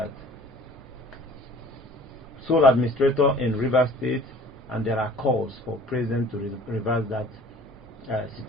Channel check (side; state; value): both; normal; correlation 0.49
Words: sole administrator in Rivers State, and there are calls for president to reverse that